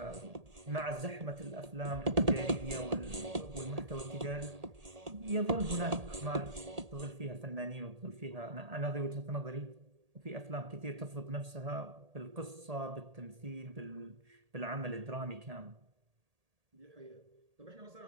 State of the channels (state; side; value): late; left; 1.8 ms